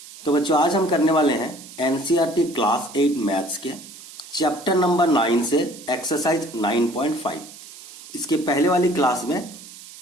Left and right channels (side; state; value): right; noise; hiss, 17 dB below the sound